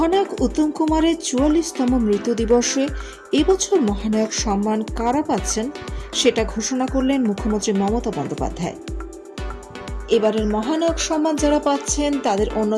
উত্তম কুমারের ৪৪তম মৃত্যু দিবসে এবছর মহানায়ক সম্মান কারা পাচ্ছেন সেটা ঘোষণা করলেন মুখ্যমন্ত্রী মমতা বন্দ্যোপাধ্যায়। এবারের মহানায়ক সম্মান যারা পাচ্ছেন তাদের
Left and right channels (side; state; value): both; identical; correlation 1.00